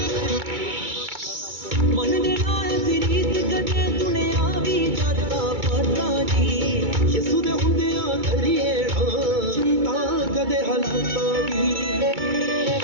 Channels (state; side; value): late; left; 2.2 ms